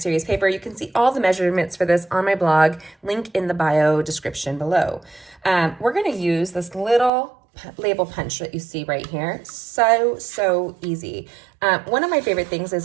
paper, you can see all the measurements for this on my blog, link in the bio description below. We're going to use this little label punch that you see right here. So easy. One of my favorite things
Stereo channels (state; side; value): drops out; left; at 7.1 s